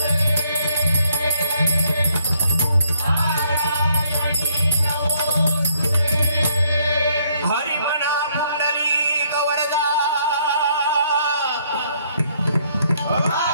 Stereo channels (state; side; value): inverted; both; correlation -0.68